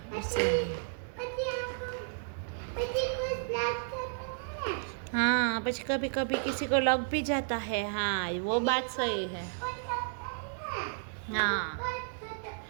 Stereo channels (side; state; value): left; silent; digital silence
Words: इसलिए हाँ बस कभी कभी किसी को लग भी जाता है। हाँ वो बात सही है। हाँ